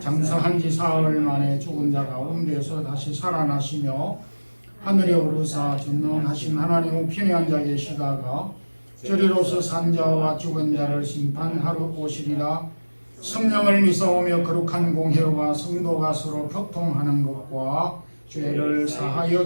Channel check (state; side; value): inverted; both; correlation -1.00